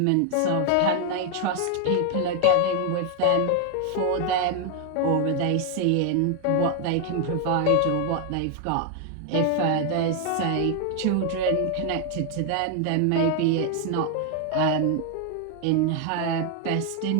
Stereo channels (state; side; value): different; both; correlation 0.00